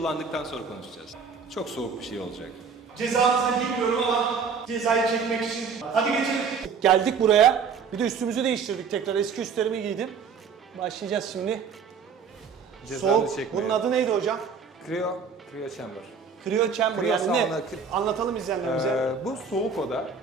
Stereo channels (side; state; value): left; quieter; 5.8 dB